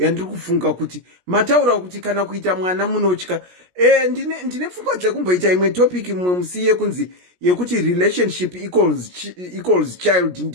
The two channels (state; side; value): late; left; 17 ms